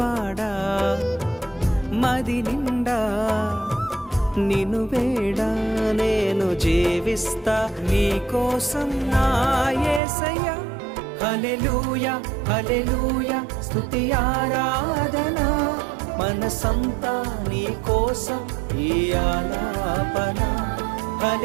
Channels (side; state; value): left; drops out; at 10.0 s